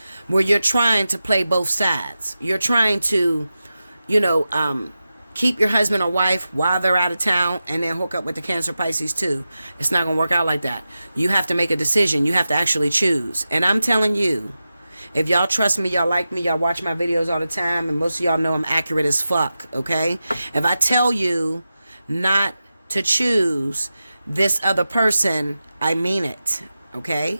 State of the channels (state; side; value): inverted; both; correlation -0.93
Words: where you're trying to play both sides. You're trying to, keep your husband or wife while they're out of town and then hook up with the Cancer Pisces too. It's not going to work out like that. You have to make a decision. You have to actually choose. And I'm telling you, if y'all trust me, y'all like me, y'all watch my videos all the time, and most of y'all know I'm accurate as fuck, okay? If I tell you not to choose this other person, I mean it, okay?